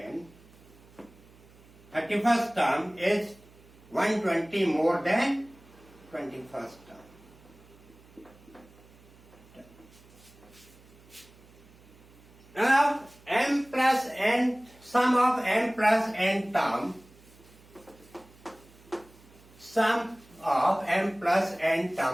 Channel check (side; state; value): right; noise; hum, 25 dB below the sound